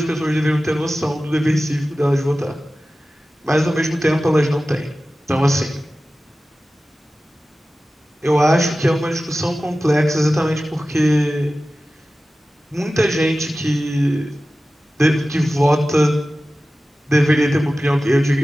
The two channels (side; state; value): both; normal; correlation 0.95